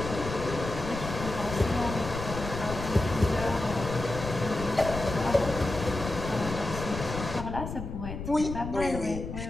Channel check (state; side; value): noise; left; rumble, 7 dB below the sound